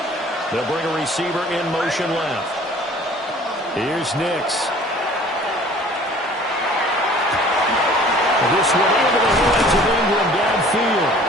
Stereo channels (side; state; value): both; normal; correlation 0.50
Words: They'll bring a receiver in motion left. Here's Nix. This one into the hands of Ingram downfield.